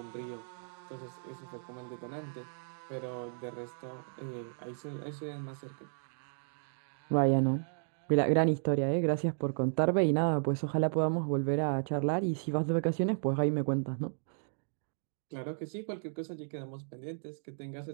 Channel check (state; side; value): silent; left; digital silence